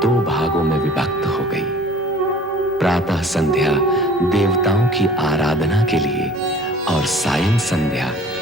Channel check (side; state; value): both; normal; correlation 0.47